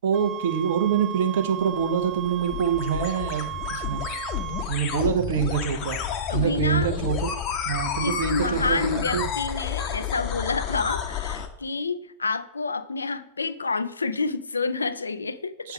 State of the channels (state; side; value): inverted; both; correlation -0.39